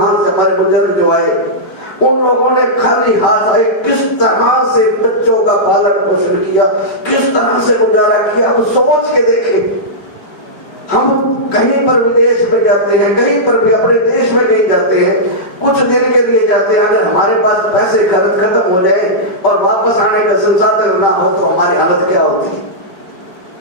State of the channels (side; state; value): right; late; 4.9 ms